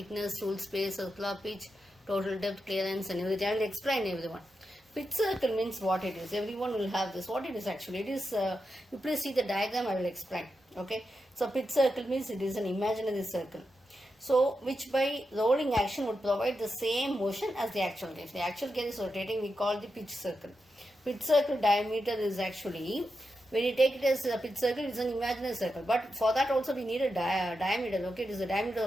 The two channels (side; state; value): both; normal; correlation 0.88